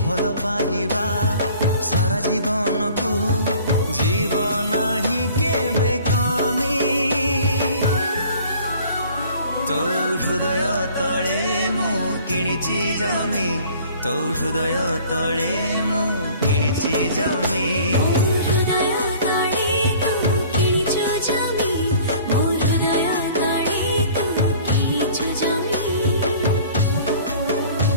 भल पाइबा सारा जीवन को जीवन ही केबे कमी तो हृदय तले मु किणिची जमी तो हृदय तले मु किणिची जमी।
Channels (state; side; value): inverted; both; correlation -0.50